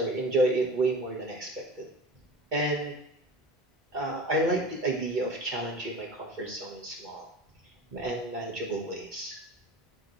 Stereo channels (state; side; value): normal; both; correlation 0.37